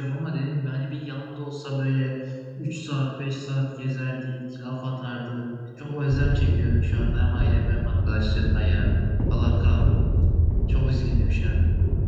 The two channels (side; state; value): both; identical; correlation 1.00